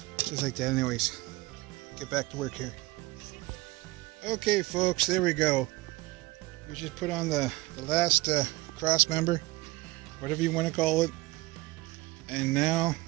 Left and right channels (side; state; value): left; quieter; 20.0 dB